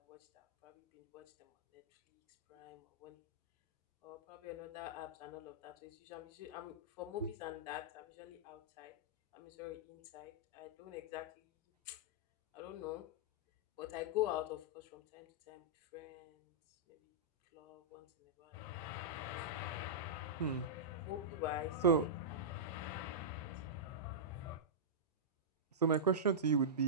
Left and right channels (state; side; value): normal; both; correlation -0.13